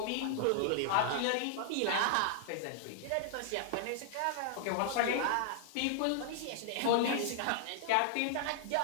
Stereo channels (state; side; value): different; both; correlation -0.01